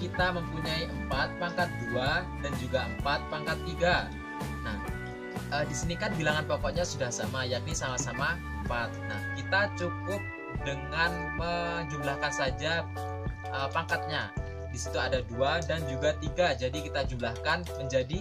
mempunyai 4 pangkat 2 dan juga 4 pangkat 3. Nah, di sini kan bilangan pokoknya sudah sama, yakni sama-sama 4. Nah, kita cukup dengan menjumlahkan saja pangkatnya. Di situ ada 2 dan juga 3, jadi kita jumlahkan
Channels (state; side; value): identical; both; correlation 1.00